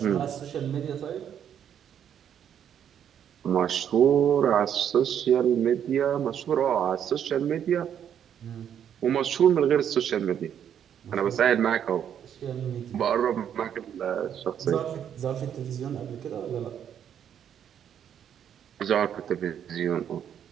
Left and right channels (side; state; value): left; quieter; 9.1 dB